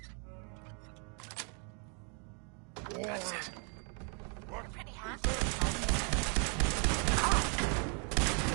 That's it. You're pretty handy.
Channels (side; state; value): left; quieter; 38.6 dB